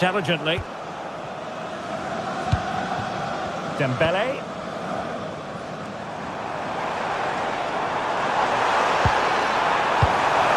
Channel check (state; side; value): identical; both; correlation 1.00